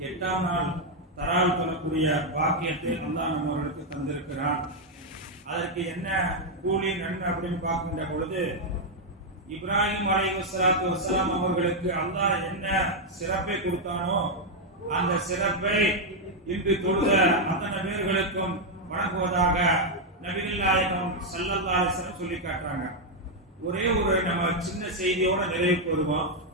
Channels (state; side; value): normal; both; correlation 0.01